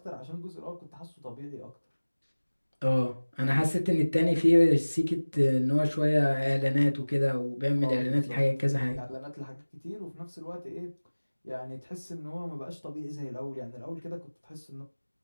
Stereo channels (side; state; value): both; inverted; correlation -1.00